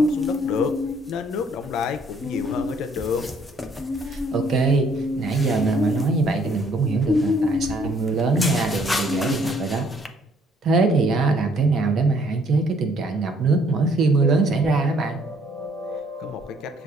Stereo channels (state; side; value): normal; both; correlation 0.63